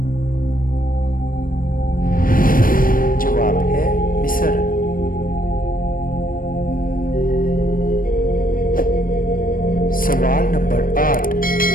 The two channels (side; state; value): right; late; 0.41 ms